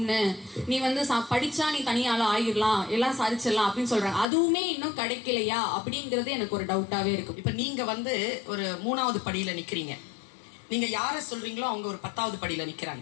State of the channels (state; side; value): drops out; right; at 4.2 s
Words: நீ படிச்சா நீ தனியால ஆயிடலாம், எல்லாம் சாதிச்சிடலாம் அப்படின்னு சொல்றாங்க. அதுவுமே இன்னும் கிடைக்கலையா அப்படிங்கிறது எனக்கு ஒரு டவுட்டாவே இருக்கும். இப்ப நீங்க ஒரு 3வது படியில நிக்கிறீங்க. நீங்க யார சொல்றீங்களோ அவங்க ஒரு 10வது படியில